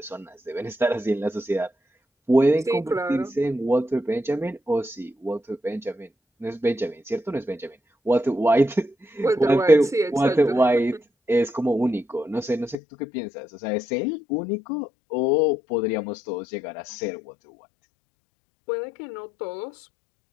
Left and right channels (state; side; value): drops out; right; at 12.8 s